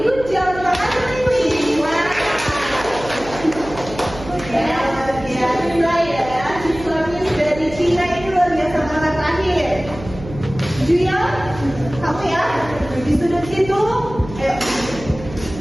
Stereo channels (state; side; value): noise; right; hum, 14 dB below the sound